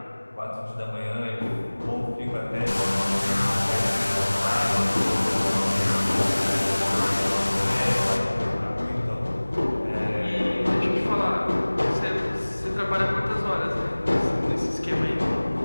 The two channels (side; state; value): both; inverted; correlation -1.00